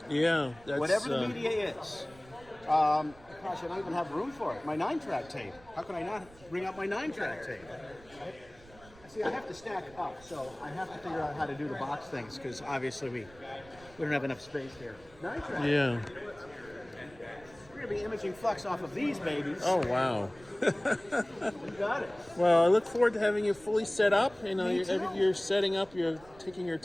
Yeah, that's Whatever the media is. Gosh, I don't even have room for it. My 9-track tape. How can I not bring up my 9-track tape? See, I have to stack up, so I have to figure out how to do the box things because obviously we don't have enough space here. 9-track. Yeah. We're gonna be imaging flux off of these babies. Oh, wow. You got it. Well, I look forward to having you fully set up. You know, Me too. you're setting up, you're taking your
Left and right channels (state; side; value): noise; right; rumble, 23 dB below the sound